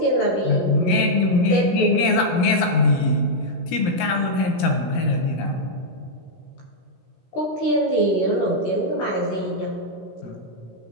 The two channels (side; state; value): right; late; 17 ms